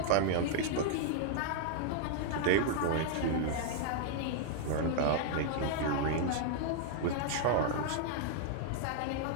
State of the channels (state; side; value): different; both; correlation -0.01